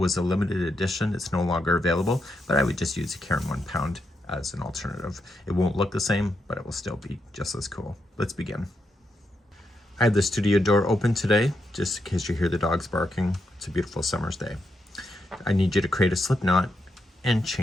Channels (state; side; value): normal; both; correlation 0.82